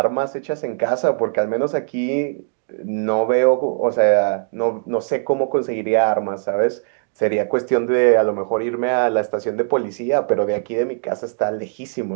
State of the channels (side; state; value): left; silent; digital silence